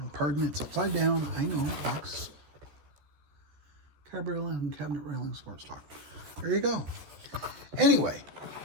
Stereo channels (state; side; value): late; left; 14 ms